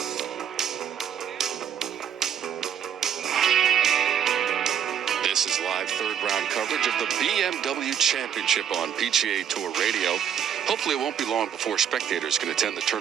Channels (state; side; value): quieter; left; 8.8 dB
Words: This is live third-round coverage of the BMW Championship on PGA Tour Radio. Hopefully it won't be long before spectators can attend the